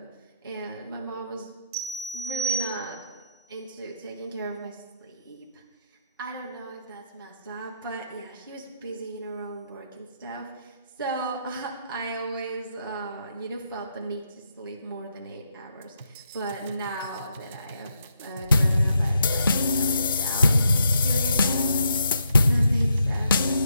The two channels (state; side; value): inverted; both; correlation -0.78